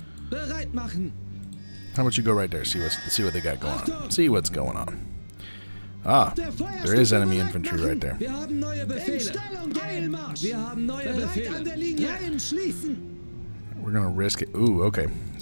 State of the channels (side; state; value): both; inverted; correlation -1.00